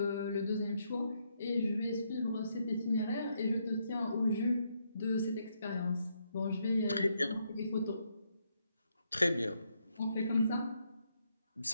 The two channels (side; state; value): both; inverted; correlation -0.77